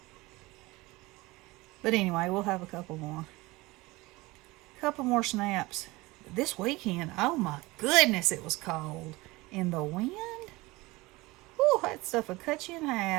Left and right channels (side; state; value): left; quieter; 21.5 dB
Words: But anyway, we'll have a couple more. Couple more snaps. This weekend, oh my goodness, it was cold. And the wind, whew, that stuff would cut you in